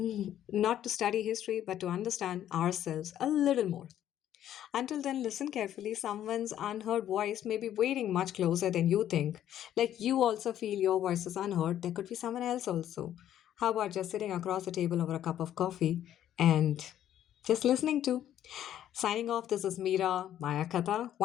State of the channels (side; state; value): right; quieter; 11.3 dB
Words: not to study history, but to understand ourselves a little more. Until then, listen carefully. Someone's unheard voice may be waiting much closer than you think. Like you also feel your voice is unheard, there could be someone else also. How about just sitting across the table over a cup of coffee and just listening to? Signing off, this is Meera, Mayaakatha.